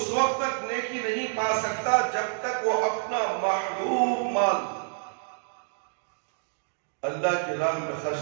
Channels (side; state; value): left; silent; digital silence